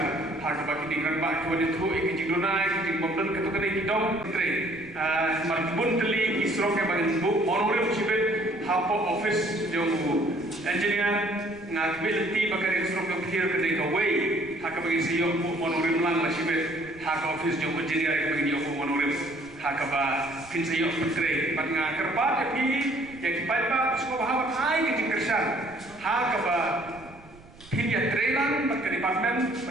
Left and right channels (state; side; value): noise; right; rumble, 22 dB below the sound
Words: hak bagi dingran bak tu ada tu ikijing donai ikijing bomben ketukane kidom tre martbun teli isro ke bagi bu monorim sibet hapo office jo engineer ngakbil ti bakare isro ke phir ke dei away hak bagi siyo monorim lang la sibet hak office jo engineer bagi yo monorim hak ba pin siyo putre pat nga kerpat epi yang kipai pa suko bahwa hai ke jingkersan hak ba pin ya trelang pat ke department